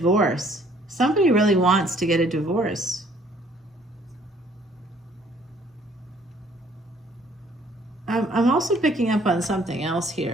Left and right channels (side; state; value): both; normal; correlation 0.60